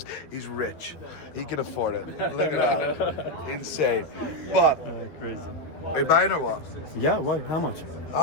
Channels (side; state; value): right; late; 12 ms